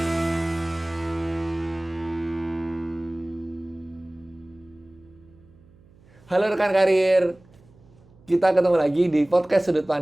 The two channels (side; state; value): right; noise; hum, 27 dB below the sound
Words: Halo rekan karir, kita ketemu lagi di podcast Sudut